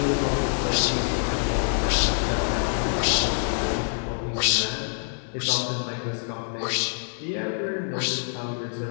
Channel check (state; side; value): silent; right; 61 dB below the other